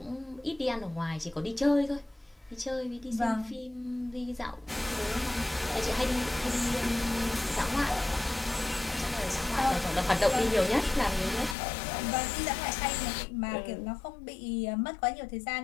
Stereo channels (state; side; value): drops out; right; at 11.6 s